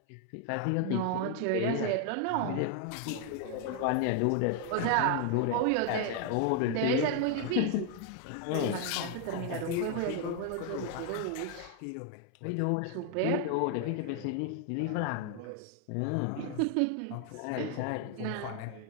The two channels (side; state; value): both; different; correlation 0.00